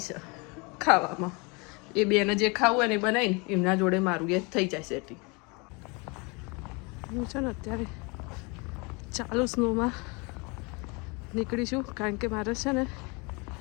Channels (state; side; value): quieter; right; 29.5 dB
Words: છે ખાવામાં. એ બેને જે ખાવું હોય ને એ બનાવીને એમના જોડે મારું એ થઈ જાય સેટિંગ. હું છે ને અત્યારે ચાલુ સ્નોમાં નીકળીશું કારણ કે મારે છે ને